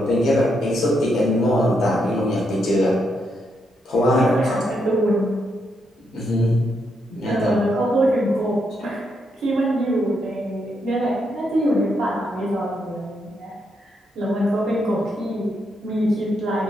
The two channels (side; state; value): both; normal; correlation 0.79